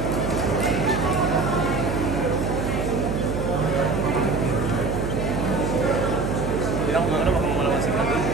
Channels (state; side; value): noise; right; hum, 2 dB below the sound